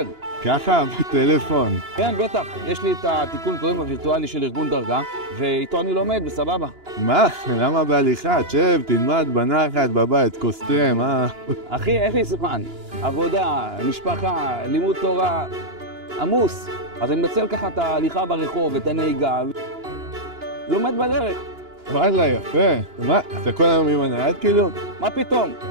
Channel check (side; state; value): left; late; 2.9 ms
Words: ככה, בטלפון. כן, בטח. יש לי את התיקון קוראים הווירטואלי של ארגון דרגה, ואיתו אני לומד, בסבבה. מה? למה בהליכה? תשב, תלמד בנחת, בבית, כוס תה, מה? אחי, אין לי זמן. עבודה, משפחה, לימוד תורה, עמוס. אז אני מנצל ככה את ההליכה ברחוב, את הנהיגה, לומד בדרך. וואלה, יפה. מה, אתה כל היום עם הנייד כאילו? מה פתאום?